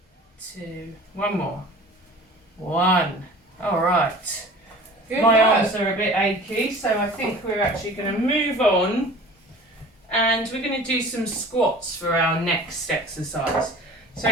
2, one more. 1. Alright. Good My work. arms are a bit achy, so I think we're actually going to move on and we're going to do some squats for our next exercise.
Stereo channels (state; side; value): normal; both; correlation 0.43